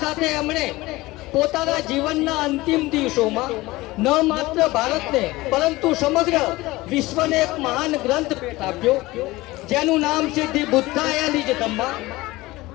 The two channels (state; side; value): quieter; right; 19.8 dB